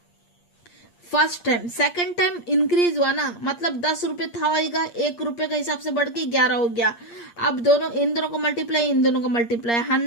first time. Second time increase हुआ ना, मतलब 10 रुपए था होगा, 1 रुपए के हिसाब से बढ़ के 11 हो गया। अब इन दोनों को मल्टीप्लाई, इन दोनों को मल्टीप्लाई,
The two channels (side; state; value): right; late; 8.6 ms